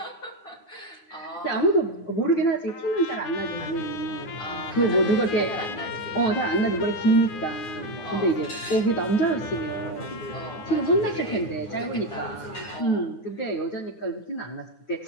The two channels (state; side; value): late; right; 9.7 ms